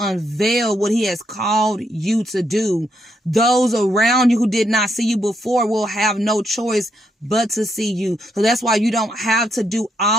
what he has called you to do. Those around you who did not see you before will have no choice but to see you. So that's why you don't have to do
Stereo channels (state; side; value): normal; both; correlation 0.78